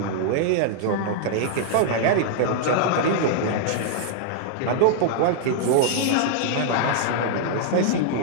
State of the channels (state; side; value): different; both; correlation -0.01